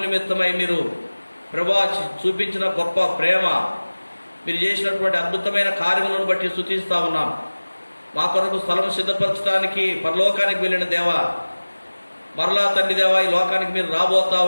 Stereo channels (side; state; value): both; inverted; correlation -1.00